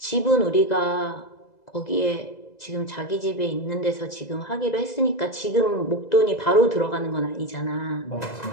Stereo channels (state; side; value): late; right; 2.0 ms